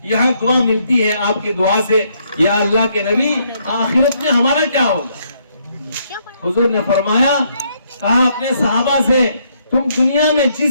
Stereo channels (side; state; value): both; inverted; correlation -0.72